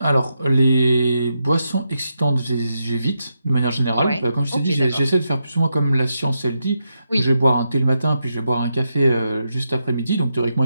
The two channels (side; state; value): both; inverted; correlation -0.85